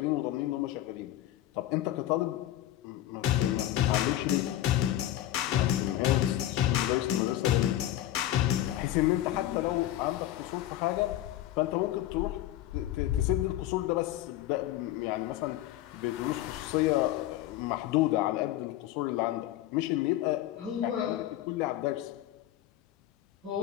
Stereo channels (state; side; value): quieter; right; 13.6 dB